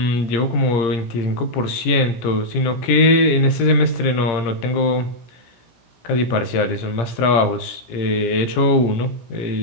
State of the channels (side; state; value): right; late; 17 ms